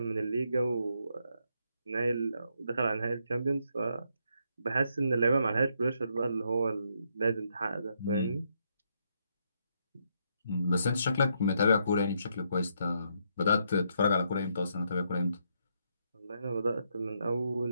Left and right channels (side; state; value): both; inverted; correlation -0.77